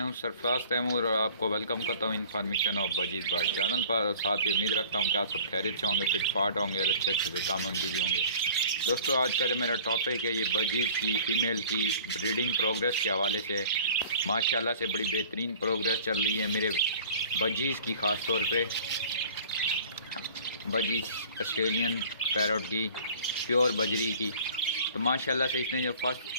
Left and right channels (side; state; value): both; inverted; correlation -0.48